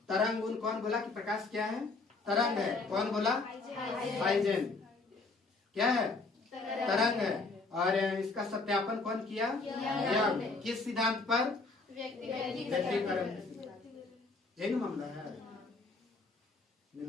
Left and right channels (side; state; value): right; quieter; 3.7 dB